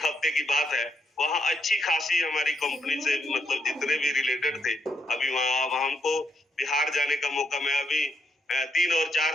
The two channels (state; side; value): normal; both; correlation 0.78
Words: हफ्ते की बात है। वहाँ अच्छी खासी हमारी कंपनी से, मतलब जितने भी रिलेटेड थे, अभी वहाँ हमको बिहार जाने का मौका। मैं अभी 3 और 4